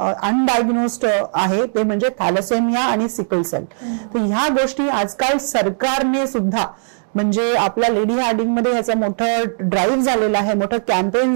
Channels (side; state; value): left; silent; digital silence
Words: आहे ते म्हणजे थॅलेसेमिया आणि सिकल सेल. तर ह्या गोष्टी आजकाल सरकारने सुद्धा, म्हणजे आपल्या लेडी हार्डिंग मध्ये याचं मोठं ड्राईव्ह झालेलं आहे, मोठं कॅम्पेन